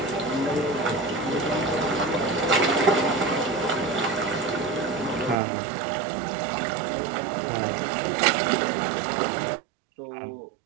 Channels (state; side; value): drops out; left; at 5.4 s